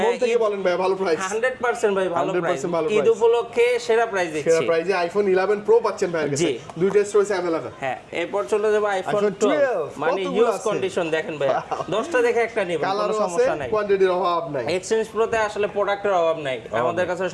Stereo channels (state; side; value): identical; both; correlation 1.00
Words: মন থেকে বলেন ভাই, ভালো প্রাইস। 100% ভাই, ভালো প্রাইস। ঈদ উপলক্ষে সেরা প্রাইস দিচ্ছি। সেরা প্রাইসে আইফোন 11 প্রো পাচ্ছেন ভাইয়ের কাছে। দুইটা স্টোরেজ अवेलेबल। হ্যাঁ, এরপর চলে যাব আইফোন 12, মানে ইউজ কন্ডিশন দেখেন ভাই, 10টা দেখে একটা নেবেন, কোনো সমস্যা নাই, কোয়ান্টিটির অভাব নাই। এক্সচেঞ্জ প্রোতে আসলে প্রোডাক্টের অভাব নাই, আমাদের কাছে